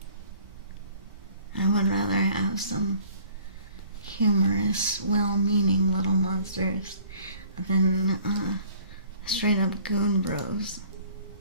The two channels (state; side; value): inverted; both; correlation -0.53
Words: I would rather have some humorous, well-meaning little monsters than straight up goon bros.